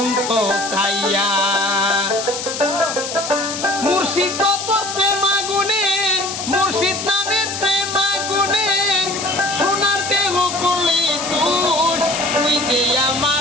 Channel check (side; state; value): left; noise; hiss, 6 dB below the sound